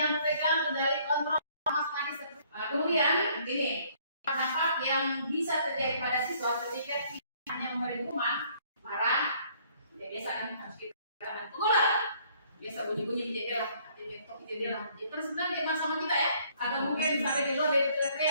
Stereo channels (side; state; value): both; inverted; correlation -0.62